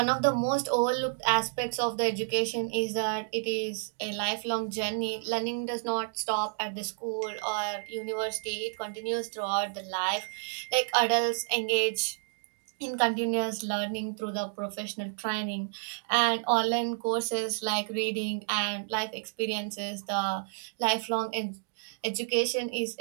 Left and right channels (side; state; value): left; silent; digital silence